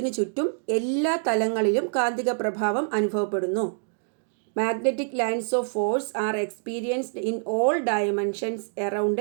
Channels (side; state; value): left; silent; digital silence